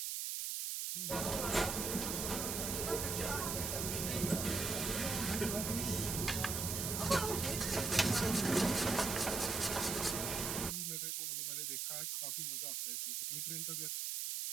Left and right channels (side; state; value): right; noise; hiss, 1 dB below the sound